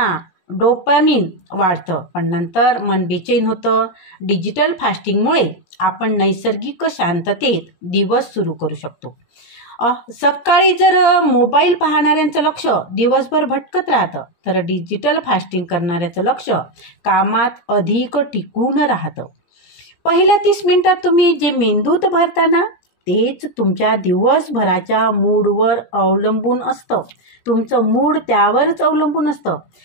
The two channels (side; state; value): right; late; 17 ms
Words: डोपामिन वाढतं, पण नंतर मन बेचैन होतं. डिजिटल फास्टिंगमुळे आपण नैसर्गिक शांततेत दिवस सुरू करू शकतो. सकाळी जर मोबाईल पाहणाऱ्यांचं लक्ष दिवसभर भटकत राहतं, तर डिजिटल फास्टिंग करणाऱ्याचं लक्ष कामात अधिक टिकून राहतं. पहिल्या 30 मिनिटात तुम्ही जे मेंदूत भरताना तेच तुमच्या दिवसभराच्या मूडवर अवलंबून असतं. तुमचं मूड त्यावरच अवलंबून असतं.